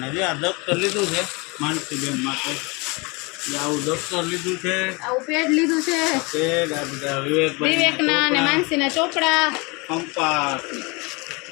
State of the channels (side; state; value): right; quieter; 28.1 dB